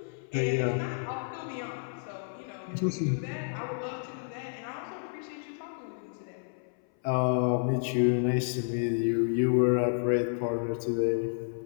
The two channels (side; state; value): right; silent; 57 dB below the other